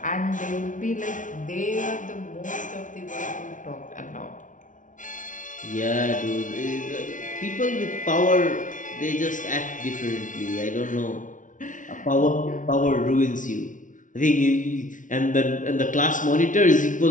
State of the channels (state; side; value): late; right; 0.37 ms